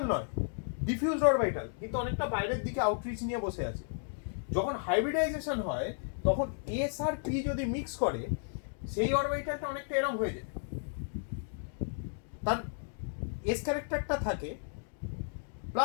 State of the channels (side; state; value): right; silent; digital silence